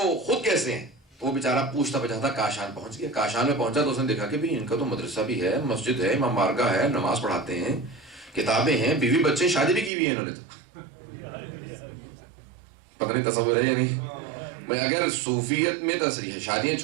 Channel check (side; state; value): left; drops out; at 9.9 s